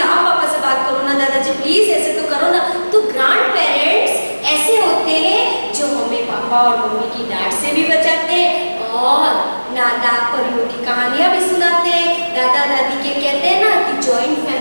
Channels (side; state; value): both; inverted; correlation -1.00